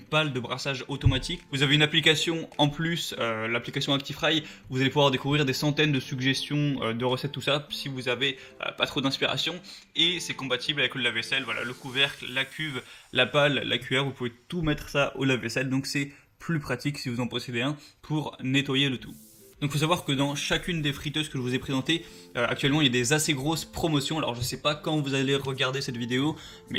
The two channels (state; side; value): identical; both; correlation 1.00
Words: pale de brassage automatique. Vous avez une application en plus, l'application ActiFry, vous allez pouvoir découvrir des centaines de suggestions de recettes, tout ça, si vous avez pas trop d'inspiration, et c'est compatible avec le lave-vaisselle, le couvercle, la cuve, la pale, la cuillère, vous pouvez tout mettre ça au lave-vaisselle, donc c'est plus pratique si vous en possédez un pour nettoyer le tout. Donc il faut savoir que dans chacune des friteuses que je vous ai présentées, actuellement il y a des assez grosses promotions. Alors je sais pas quand vous allez regarder cette vidéo,